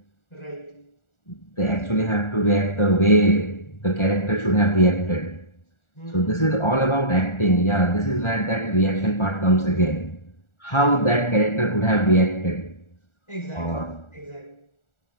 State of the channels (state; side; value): late; right; 1.4 ms